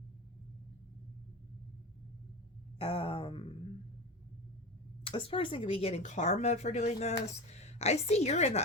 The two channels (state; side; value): normal; both; correlation 0.26